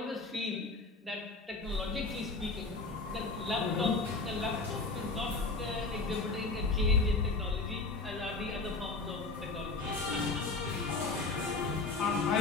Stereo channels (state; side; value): quieter; right; 3.6 dB